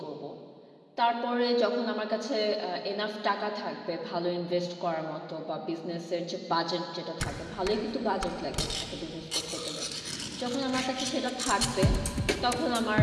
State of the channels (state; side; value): identical; both; correlation 1.00